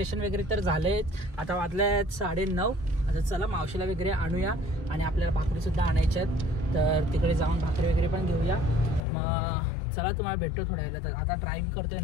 वगैरे तर झालेच, आता वाजले 9:30. आता चला मावशीला वगैरे आणूया आणि आपल्याला भाकरी सुद्धा आणायच्यात, तर तिकडे जाऊन भाकरी वगैरे पण घेऊया. मग चला तुम्हाला भेटतो थोड्या वेळेला. तर आता ड्राईव्ह करतोय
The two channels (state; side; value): drops out; right; at 9.1 s